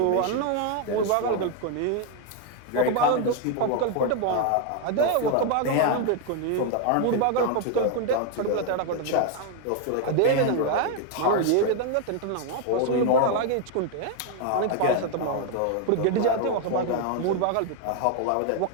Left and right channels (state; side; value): different; both; correlation 0.01